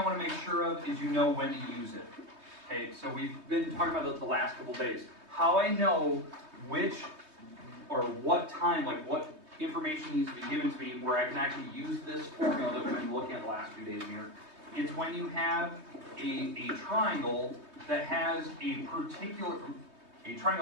want to make sure of is you know when to use it. Okay, so we've been talking about this the last couple days. How I know which or what time, like what information needs to be given to me where I can actually use this formula that we've been looking at the last few days here, is when you have a triangle that has a particular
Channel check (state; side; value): late; left; 3.2 ms